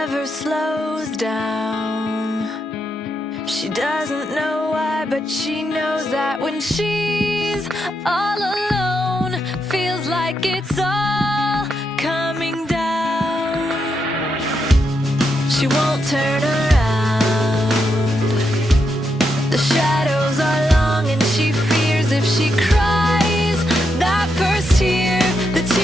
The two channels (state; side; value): normal; both; correlation 0.82